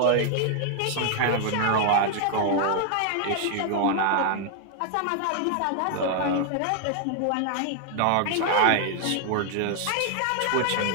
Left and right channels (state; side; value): different; both; correlation 0.00